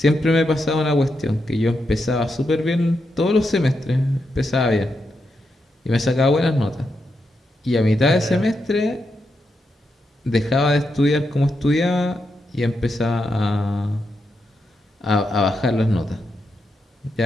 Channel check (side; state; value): both; normal; correlation 0.84